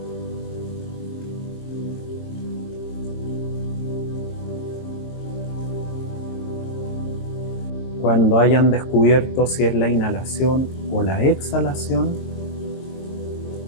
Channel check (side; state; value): right; late; 22 ms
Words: Cuando hayan descubierto si es la inhalación o la exhalación,